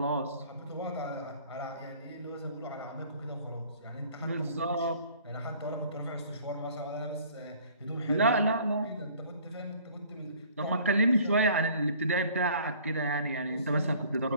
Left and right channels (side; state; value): both; inverted; correlation -0.53